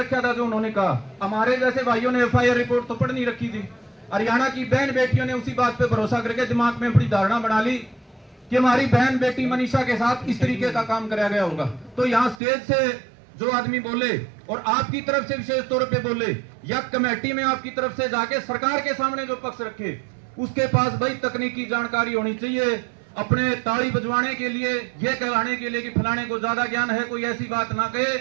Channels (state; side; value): drops out; left; at 12.4 s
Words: था जो उन्होंने कहा। हमारे जैसे भाइयों ने एफआईआर रिपोर्ट तो पढ़ नहीं रखी थी। हरियाणा की बहन बेटियों ने उसी बात पे भरोसा करके दिमाग में बड़ी धारणा बना ली कि हमारी बहन बेटी मनीषा के साथ इस तरीके का काम कराया गया होगा। तो यहाँ स्टेज से जो आदमी बोले और आपकी तरफ से विशेष तौर पे बोले, या कमेटी में आपकी तरफ से जाके सरकार के सामने जो पक्ष रखे, उसके पास भाई तकनीकी जानकारी होनी चाहिए, अपने ताली बजवाने के लिए, ये कहलाने के लिए कि फलाने को ज्यादा ज्ञान है, कोई ऐसी बात ना कहे